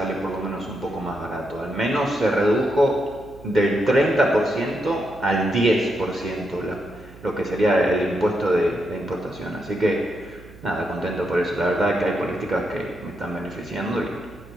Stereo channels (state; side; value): noise; right; hum, 20 dB below the sound